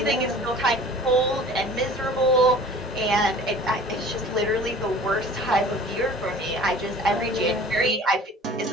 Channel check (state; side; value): normal; both; correlation 0.45